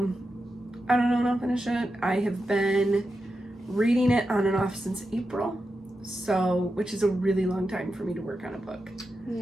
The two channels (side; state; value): both; normal; correlation 0.89